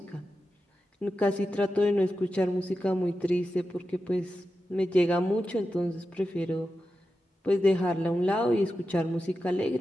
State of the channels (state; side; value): normal; both; correlation 0.91